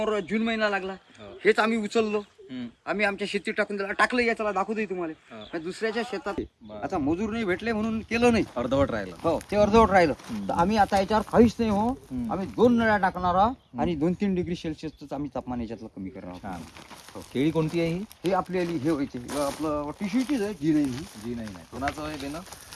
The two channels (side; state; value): both; identical; correlation 1.00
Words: जून महिना लागला. हेच आम्ही उचललो. आम्ही आमच्या शेतीत टाकून दिला. टाकलं याच्याला दाखवतोय तुम्हाला. दुसऱ्याच्या शेतात आता मजूर नाही भेटले म्हणून केलं नाही. अर्धवट राहिलं. हो ते अर्धवट राहिलं. तर आम्ही आता याच्यावर काहीच नाही हो. आम्ही 2 नळ्या टाकणार आहोत आणि 2-3 डिग्री सेल्सिअसच आम्ही तापमान याच्यातलं कमी करणार आहोत. केळी कोणती आहे ही? हे आपल्याला हे व्हायचे आपलं टिश्यूचीच आहे जी नाही. जी नाही. कोणाचं आहे देणं?